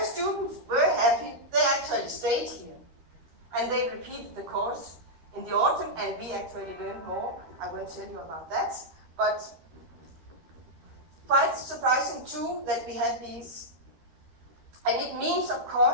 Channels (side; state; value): left; late; 13 ms